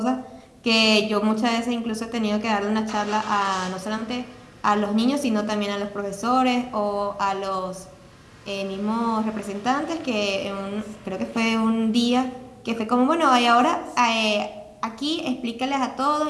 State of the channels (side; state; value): both; identical; correlation 1.00